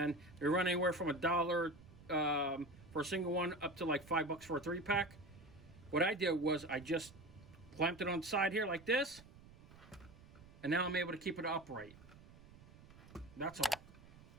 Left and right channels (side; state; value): right; noise; rumble, 21 dB below the sound